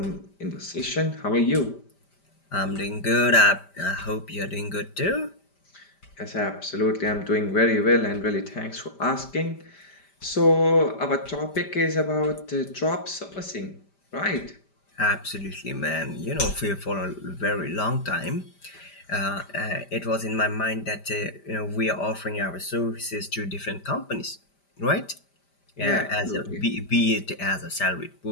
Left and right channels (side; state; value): right; late; 5.1 ms